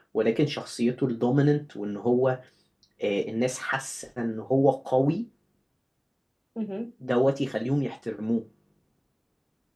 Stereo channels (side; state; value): both; identical; correlation 1.00